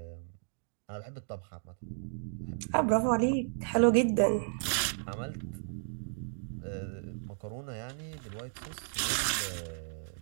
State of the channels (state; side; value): silent; left; digital silence